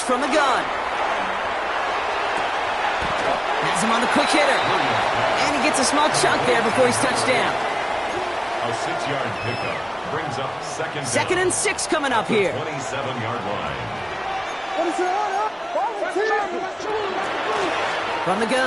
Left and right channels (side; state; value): both; identical; correlation 1.00